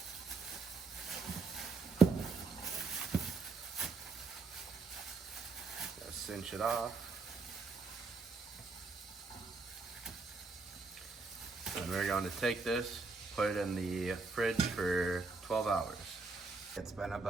Cinch it off. And we're going to take this, put it in the fridge for 12 hours. It's been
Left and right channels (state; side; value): quieter; left; 4.1 dB